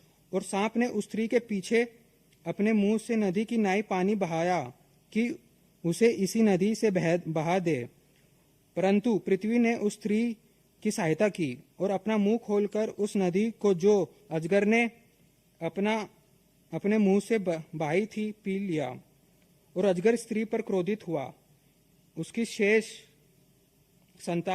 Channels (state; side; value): identical; both; correlation 1.00